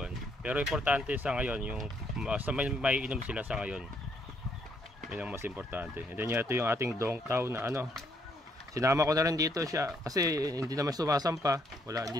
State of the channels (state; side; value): normal; both; correlation 0.71